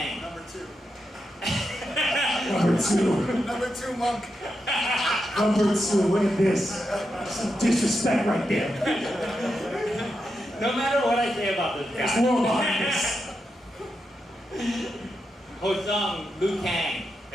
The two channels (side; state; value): both; normal; correlation 0.86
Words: Number two. Number 2, Monk. two, look at this. Some disrespect right there. No matter what I say about this There's guy. more behind this. Ho Sung, Liu Kang.